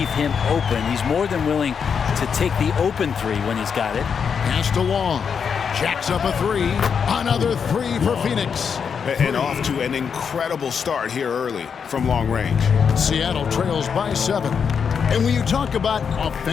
him open. He's more than willing to take the open 3 when he's got it. Pass to Long. Jacks up a 3. Another 3 for Phoenix. And off to an incredible start here early from long range. Seattle trails by 7. And when you talk about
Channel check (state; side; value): quieter; right; 6.6 dB